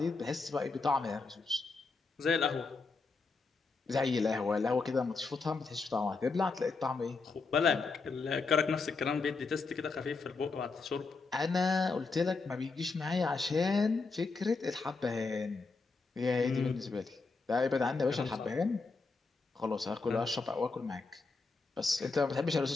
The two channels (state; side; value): quieter; right; 4.1 dB